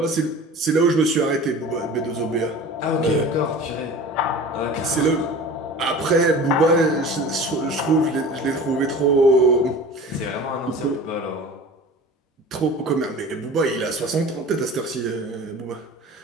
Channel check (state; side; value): normal; both; correlation 0.39